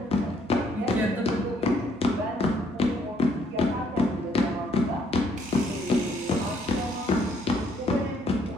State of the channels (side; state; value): both; normal; correlation 0.68